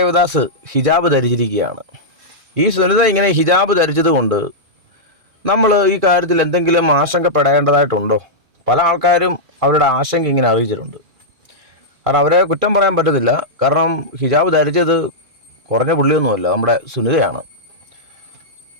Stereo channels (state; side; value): late; left; 2.4 ms